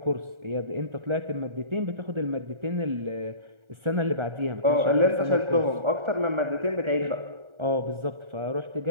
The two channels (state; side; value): late; left; 1.4 ms